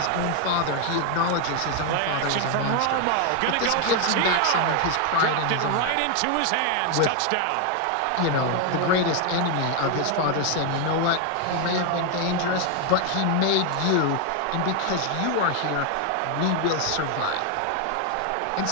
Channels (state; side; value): different; both; correlation 0.01